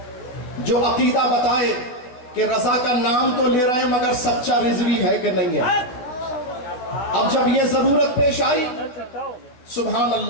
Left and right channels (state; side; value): late; right; 16 ms